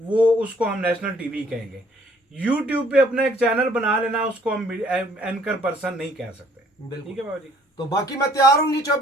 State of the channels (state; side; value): normal; both; correlation 0.61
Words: उसको हम नेशनल टीवी कहेंगे। यूट्यूब पे अपना एक चैनल बना लेना, उसको हम एंकर पर्सन नहीं कह सकते। ठीक है बाबा जी। तो बाकी मैं तैयार हूँ जी,